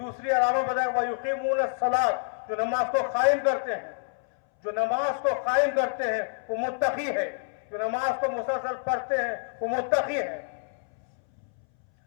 علامت بتایا گیا وَيُقِيمُونَ الصَّلَاةَ، جو نماز کو قائم کرتے ہیں، جو نماز کو قائم کرتے ہیں وہ متقی ہے، جو نماز کو مسلسل پڑھتے ہیں وہ متقی ہے۔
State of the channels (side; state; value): right; silent; 60 dB below the other